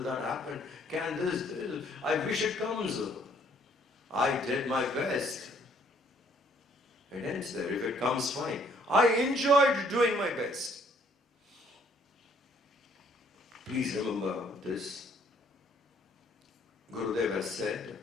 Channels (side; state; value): both; normal; correlation 0.63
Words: that happen? Can this? I wish it comes. I did my best. It ends there. If it comes, fine. I enjoyed doing my best. Please remember this. Gurudev has said,